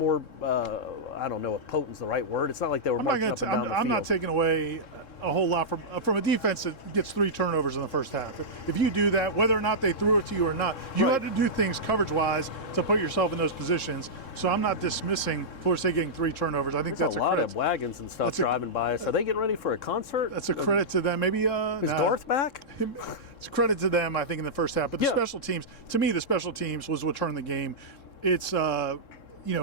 I don't know if potent's the right word. It's not like they were marching up and down the field. I'm not taking away a whole lot from a defense that gets 3 turnovers in the first half. If you do that, whether or not they threw it to you or not, you had to do things coverage-wise to put yourself in those positions. So I'm not dismissing Florida State getting 3 turnovers. I think There's that's a lot of wagons and stuff driving by us. Are they getting ready for a concert? That's a credit to them. Maybe is Garth back? It's credit to them, I think, in the first half. But the special teams, to me, the special teams was what turned the game. It's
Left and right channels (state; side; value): late; right; 3.7 ms